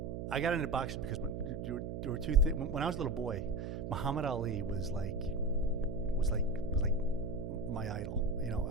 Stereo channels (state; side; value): noise; right; hum, 5 dB below the sound